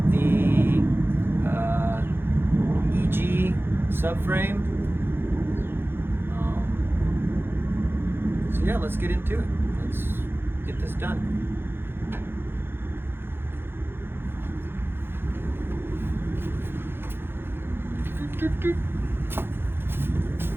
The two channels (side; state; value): left; late; 0.11 ms